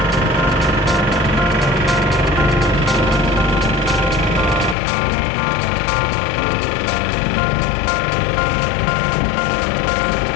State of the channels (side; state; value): right; drops out; at 4.8 s